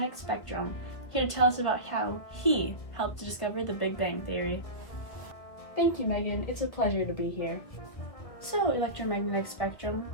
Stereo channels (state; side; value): late; right; 1.8 ms